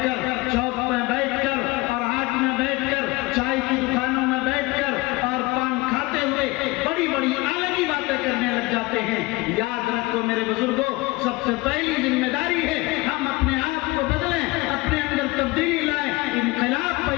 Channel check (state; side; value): quieter; right; 22.1 dB